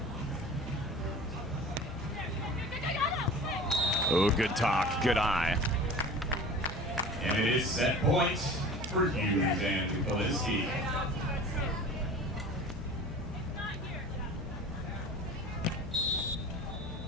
Oh, good talk, good eye. And it is set point for Hughes and Kolinske.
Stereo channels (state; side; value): normal; both; correlation 0.40